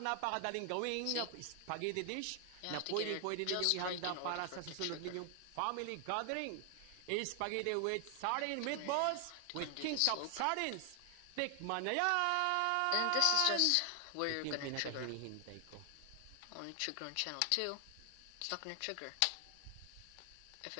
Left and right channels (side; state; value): both; different; correlation 0.00